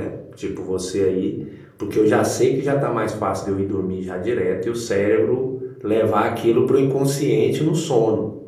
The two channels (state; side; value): identical; both; correlation 1.00